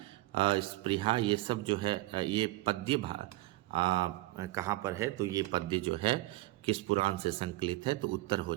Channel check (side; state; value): left; quieter; 19.3 dB